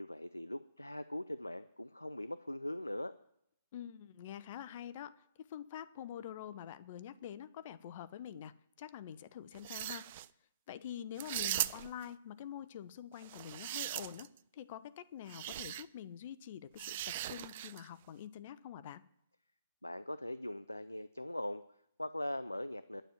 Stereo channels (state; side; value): inverted; both; correlation -0.61